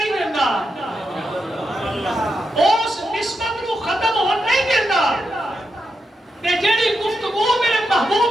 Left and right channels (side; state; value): both; normal; correlation 0.85